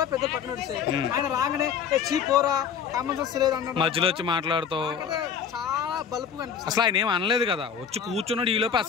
పెద్ద పక్కన నడిచాయి. ఆయన రాగానే చీపోరా కామన్ సెన్స్ లేదు అన్న మధ్యలో వచ్చి మాట్లాడుతూ చాలా బలుపుగా అనిపిస్తుంది. అసలు ఆయన ఏం అనలేదు కదా, వచ్చి కూర్చున్నాడు, ఈ లోపు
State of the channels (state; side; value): quieter; right; 7.4 dB